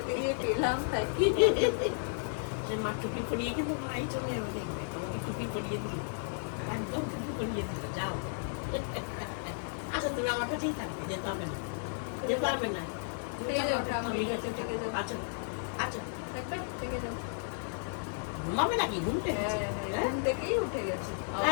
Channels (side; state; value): right; silent; digital silence